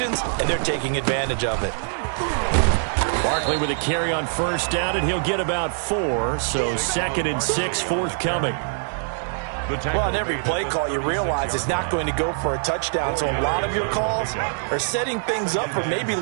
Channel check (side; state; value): left; silent; digital silence